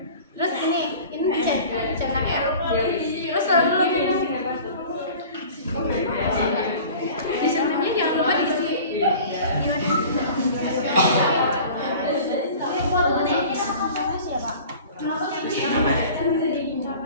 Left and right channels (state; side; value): inverted; both; correlation -0.42